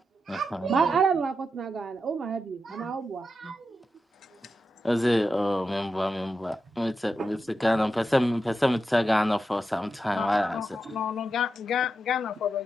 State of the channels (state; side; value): normal; both; correlation 0.88